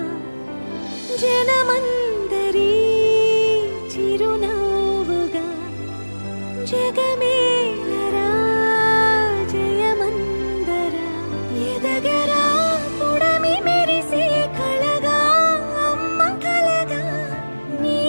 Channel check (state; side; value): inverted; both; correlation -1.00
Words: జనమందరి చిరునవ్వుగా జగమేలరా జయమందరా ఎదగరా పుడమి మెరిసే కళగా అమ్మ కలగా నీ